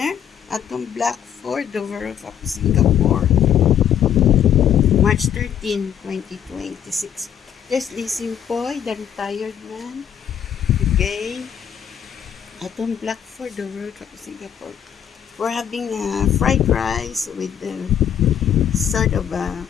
at the Black Fort, the World of Singapore, March 13, 2026. There's Lizzie Poy, the retired man. Okay. At the Black Fort, the World of Singapore. We're having fried rice with sort of a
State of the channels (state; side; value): quieter; right; 9.2 dB